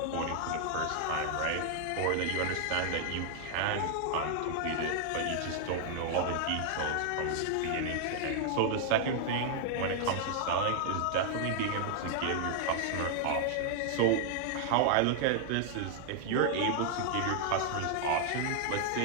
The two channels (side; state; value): both; different; correlation 0.00